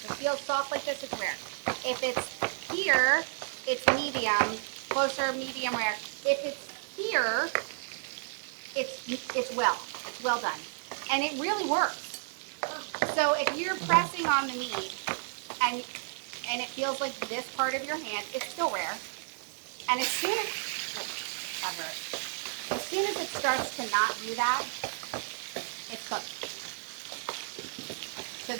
it feels soft like this, it's rare. If it's here, it's medium, closer, medium rare. If it's here, it's well done. And it really works. So if you're pressing on the meat and it feels like this part of your hand, it's still rare. And as soon as, that hurt. As soon as it starts to not do that, it's cooked. So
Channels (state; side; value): silent; left; 56 dB below the other